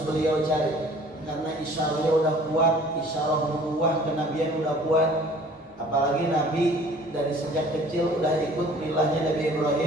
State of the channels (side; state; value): both; normal; correlation 0.51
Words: beliau cari, karena isyarahnya udah kuat, isyarah nubuwah kenabian udah kuat. Apalagi Nabi dari sejak kecil udah ikut milahnya Nabi